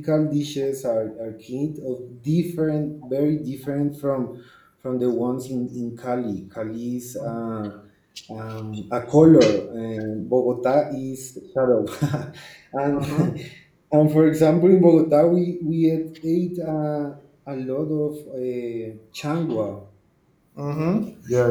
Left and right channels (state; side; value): identical; both; correlation 1.00